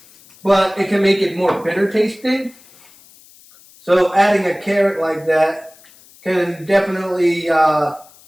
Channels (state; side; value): noise; left; hiss, 26 dB below the sound